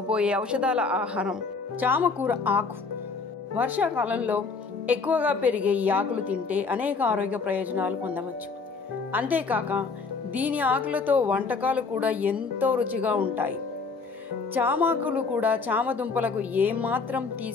ఔషధాల ఆహారం చామకూర ఆకు. వర్షాకాలంలో ఎక్కువగా పెరిగే ఈ ఆకులు తింటే అనేక ఆరోగ్య ప్రయోజనాలు పొందవచ్చు. అంతేకాక దీని ఆకులతో వంటకాలు కూడా ఎంతో రుచిగా ఉంటాయి. చామాకులు కూడా చామదుంపలకు ఏమాత్రం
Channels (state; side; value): quieter; right; 4.6 dB